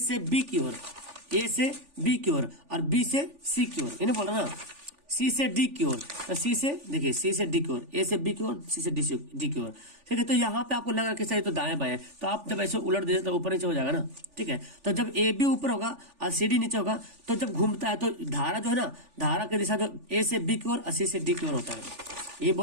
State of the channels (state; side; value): late; left; 3.4 ms